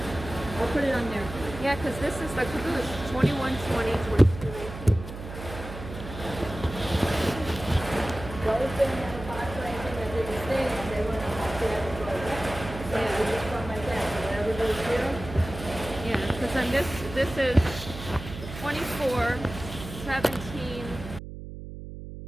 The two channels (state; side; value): noise; right; hum, 11 dB below the sound